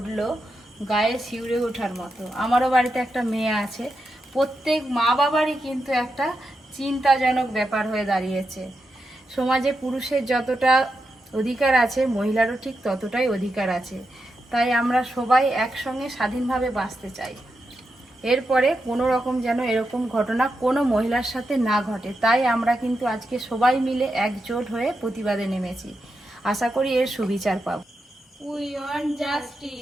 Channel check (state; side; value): normal; both; correlation 0.87